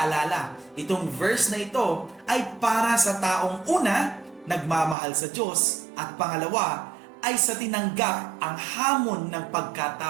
itong verse na ito ay para sa taong una, nagmamahal sa Diyos, at pangalawa, ay sa tinanggap ang hamon ng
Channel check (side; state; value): left; drops out; at 5.0 s